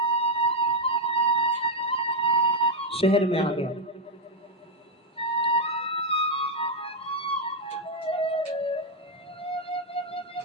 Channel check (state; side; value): normal; both; correlation 0.01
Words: शहर में आ गया।